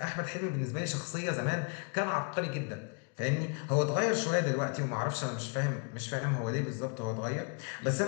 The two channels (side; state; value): right; quieter; 37.4 dB